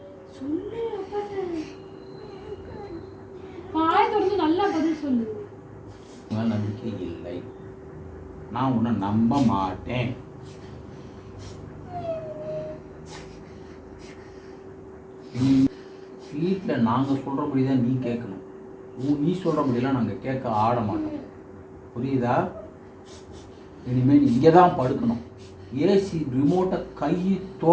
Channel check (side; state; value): both; identical; correlation 1.00